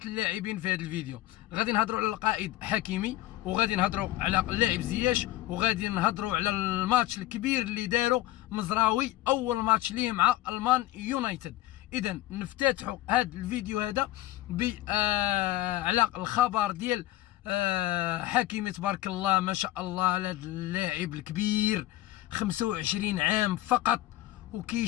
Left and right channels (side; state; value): right; quieter; 16.0 dB